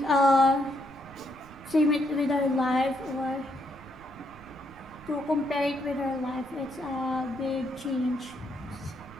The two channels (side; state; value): right; noise; rumble, 21 dB below the sound